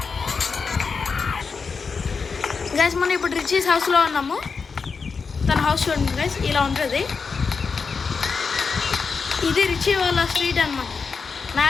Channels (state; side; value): quieter; right; 5.1 dB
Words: గైస్. మనం ఇప్పుడు రిచీస్ హౌస్లో ఉన్నాము. తన హౌస్ చూడండి గైస్, ఇలా ఉంటుంది. ఇది రిచి వాళ్ళ స్ట్రీట్ అనమాట. నా